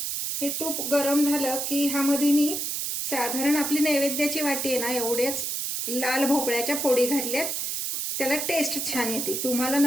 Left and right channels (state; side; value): noise; right; hiss, 2 dB below the sound